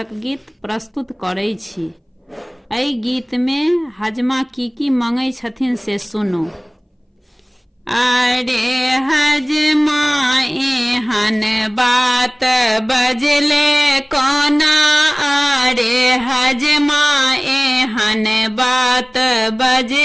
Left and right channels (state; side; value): identical; both; correlation 1.00